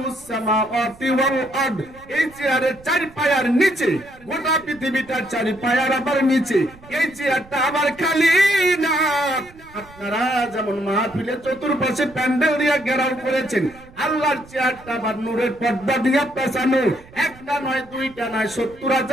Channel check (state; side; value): noise; right; rumble, 23 dB below the sound